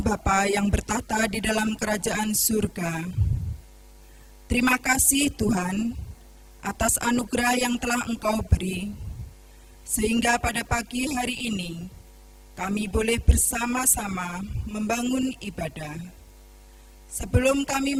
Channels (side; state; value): both; identical; correlation 1.00